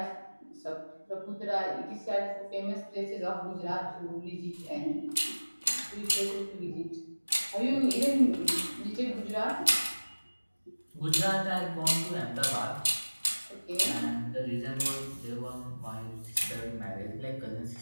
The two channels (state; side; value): inverted; both; correlation -1.00